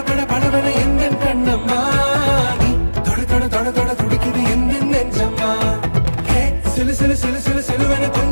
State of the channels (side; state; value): both; inverted; correlation -1.00